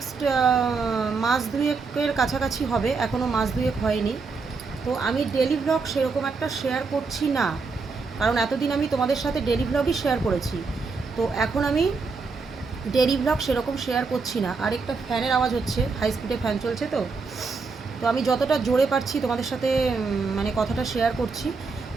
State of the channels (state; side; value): quieter; left; 4.5 dB